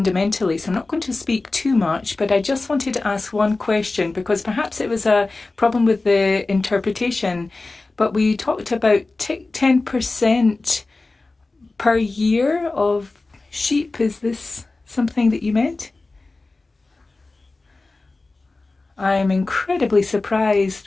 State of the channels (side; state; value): right; quieter; 3.4 dB